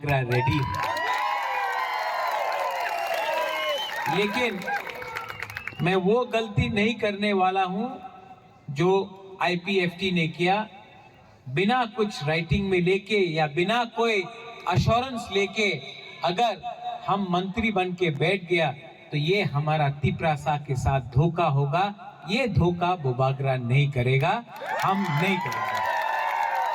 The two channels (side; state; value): both; identical; correlation 1.00